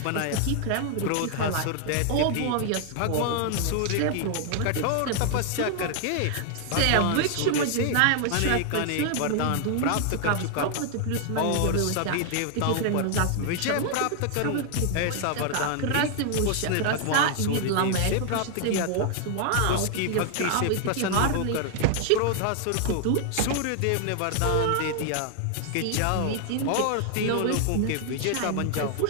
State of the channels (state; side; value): different; both; correlation 0.00